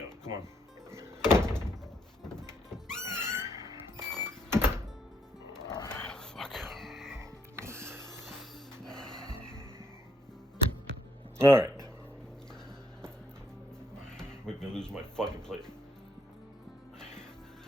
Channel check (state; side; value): normal; both; correlation 0.72